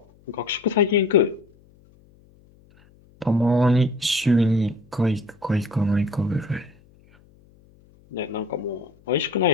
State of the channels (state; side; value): noise; left; hum, 29 dB below the sound